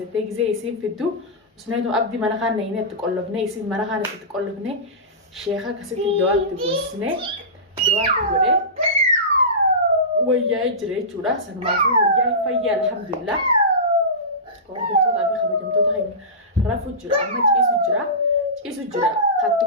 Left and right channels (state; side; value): normal; both; correlation -0.19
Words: gizee isiin fiddu usneetu abdii mana kaan nayinee itti qollofnee isiin mana kaan itti qollofnee sheeka akkasitti du'aatti goosnee du'aatti godhee wayyaa'ee jira jechuudha. Sanumaafuu wayyaa'ee fayyaa alhamdulillah. Hordoftoota fi kabajamtoota keenya rafuu jira amma ciisu jira katti